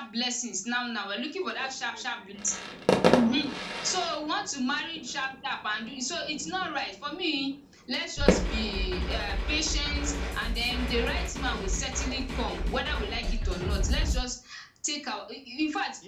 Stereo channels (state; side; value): identical; both; correlation 1.00